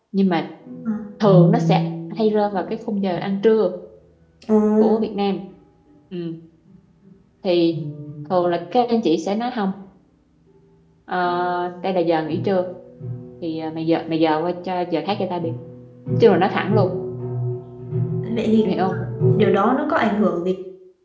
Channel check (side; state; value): both; identical; correlation 1.00